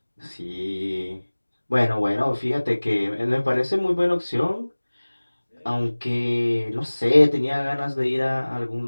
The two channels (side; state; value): both; inverted; correlation -1.00